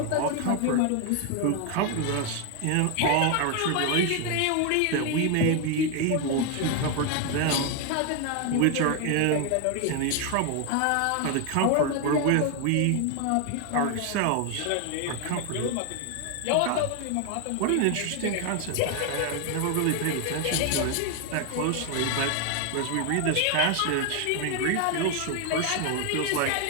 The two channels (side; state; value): both; different; correlation 0.01